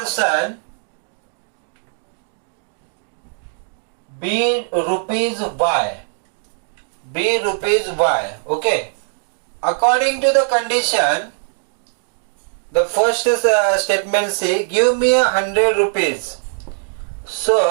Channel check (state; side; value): silent; left; digital silence